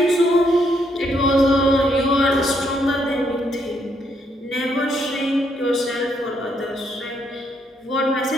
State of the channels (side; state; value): both; normal; correlation 0.74